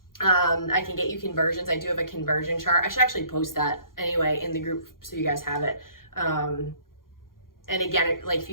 I can get you conversions. I do have a conversion chart. I should actually post that anyway in the group so you guys have it. And again, like if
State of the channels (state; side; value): late; right; 0.91 ms